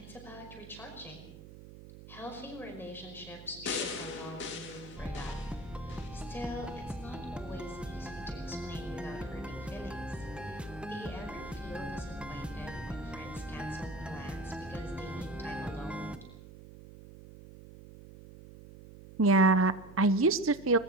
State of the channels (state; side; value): noise; right; hum, 16 dB below the sound